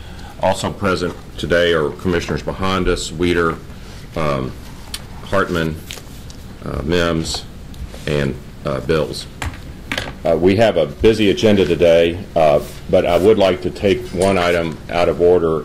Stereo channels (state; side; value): identical; both; correlation 1.00